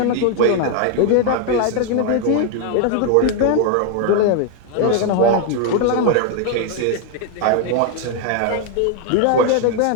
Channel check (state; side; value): different; both; correlation 0.00